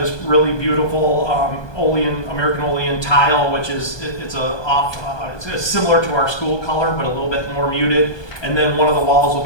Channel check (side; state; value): right; late; 1.2 ms